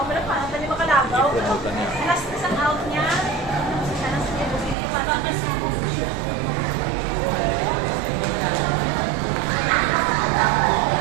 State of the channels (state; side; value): drops out; left; at 4.8 s